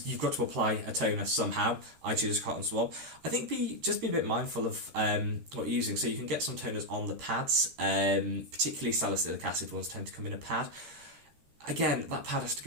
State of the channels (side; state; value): left; late; 13 ms